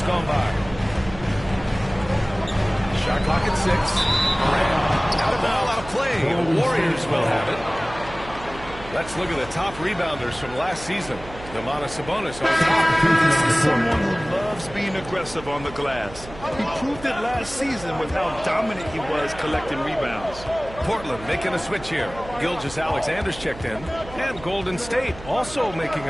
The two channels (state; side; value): noise; right; hum, 15 dB below the sound